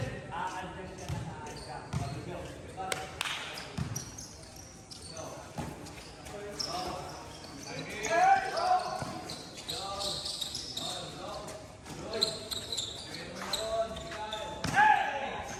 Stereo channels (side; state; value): both; identical; correlation 1.00